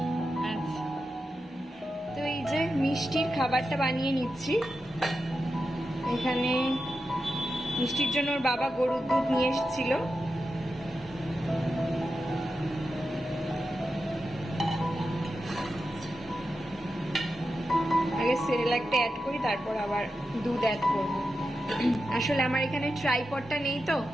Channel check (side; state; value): both; normal; correlation 0.90